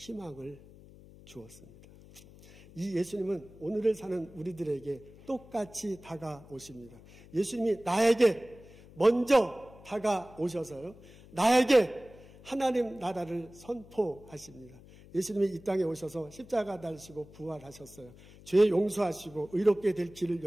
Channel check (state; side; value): noise; left; hum, 21 dB below the sound